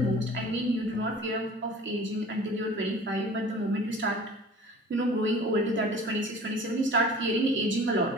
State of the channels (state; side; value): normal; both; correlation 0.44